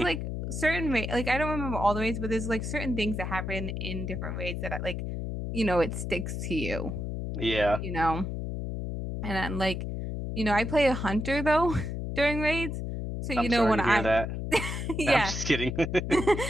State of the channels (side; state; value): left; noise; hum, 4 dB below the sound